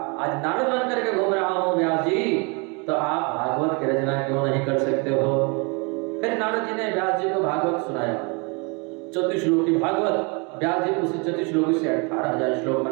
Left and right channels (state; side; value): quieter; left; 31.9 dB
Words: आज नारद बन करके घूम रहा हूँ व्यास जी, तो आप भागवत की रचना क्यों नहीं कर सकते हो? फिर नारद जी ने व्यास जी को भागवत सुनाया, 34 श्लोकी भागवत। व्यास जी उसी 34 श्लोकी से 18,000 श्लोक